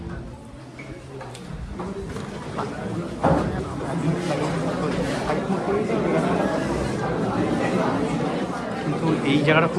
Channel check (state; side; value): identical; both; correlation 1.00